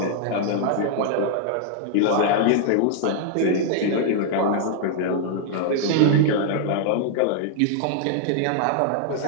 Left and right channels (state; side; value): different; both; correlation -0.01